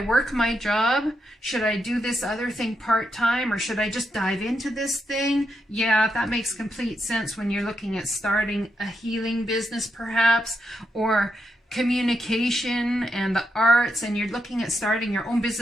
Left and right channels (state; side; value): normal; both; correlation 0.83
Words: work my job? Should I do this other thing part-time, or should I just dive into this thing? Yeah, that makes complete sense when you're looking at starting a healing business, perhaps, or communication and the arts, and you're looking at starting your own